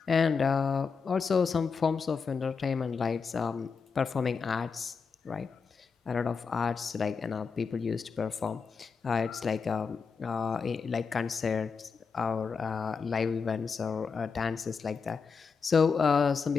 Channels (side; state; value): right; quieter; 5.4 dB